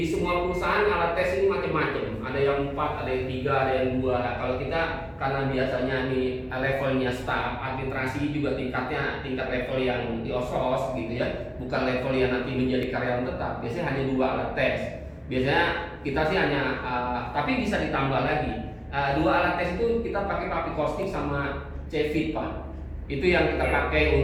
semua perusahaan alat tes ini macam-macam. Ada yang 4, ada yang 3, ada yang 2. Kalau kita karena biasanya nih levelnya staff, administrasi juga tingkat level yang di OSOS gitu ya, bukan level yang nanti menjadi karyawan tetap. Biasanya hanya 2 alat tes. Biasanya kita sih hanya, tapi bisa ditambah lagi. 2 alat tes itu kita pakai public costing sama CFIT, Pak. Itu yang kita pakai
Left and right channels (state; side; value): identical; both; correlation 1.00